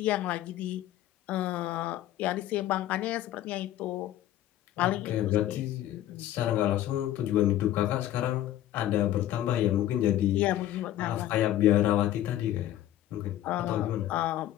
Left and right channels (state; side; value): quieter; right; 13.1 dB